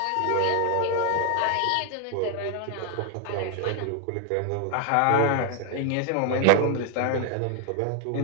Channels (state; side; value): different; both; correlation 0.00